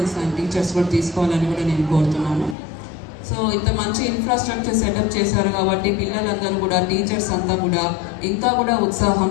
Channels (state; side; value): drops out; right; at 2.6 s